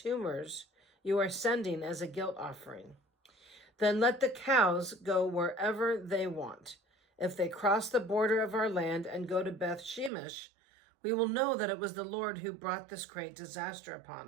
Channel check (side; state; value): left; drops out; at 10.1 s